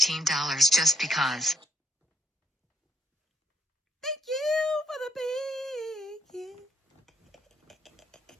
just because. Thank you for the bacon.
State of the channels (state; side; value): normal; both; correlation 0.73